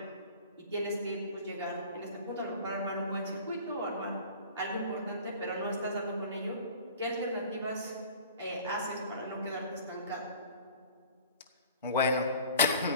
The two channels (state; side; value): inverted; both; correlation -0.45